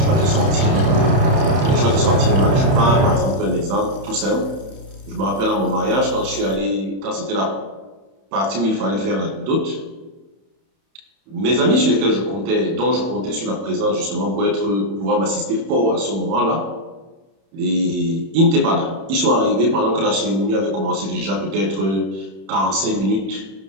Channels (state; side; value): late; left; 31 ms